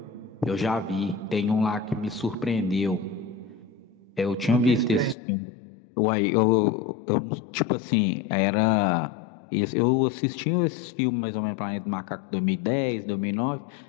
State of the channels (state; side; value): drops out; right; at 5.2 s